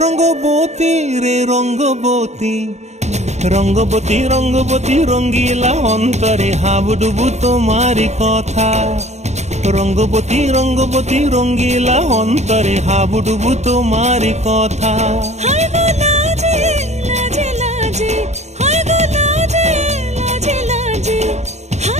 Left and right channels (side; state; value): left; late; 0.32 ms